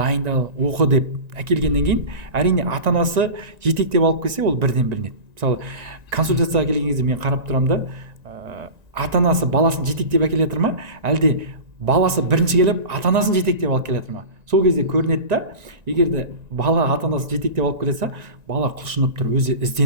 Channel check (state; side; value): late; left; 1.9 ms